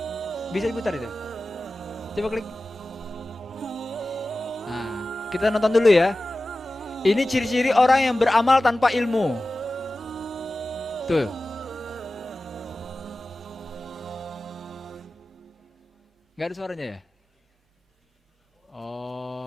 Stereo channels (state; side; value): normal; both; correlation 0.96